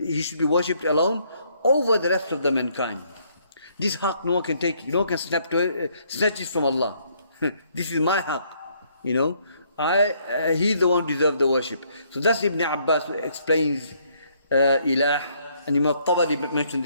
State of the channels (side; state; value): both; inverted; correlation -0.68